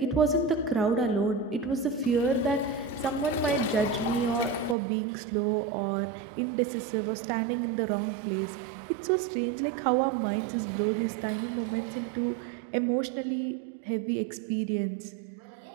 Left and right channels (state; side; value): drops out; left; at 4.8 s